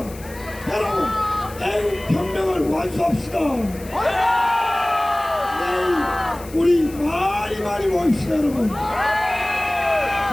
여러분 애국 혁명을 완수합시다. 내일 우리 많이 모입시다 여러분.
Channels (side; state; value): left; noise; hiss, 19 dB below the sound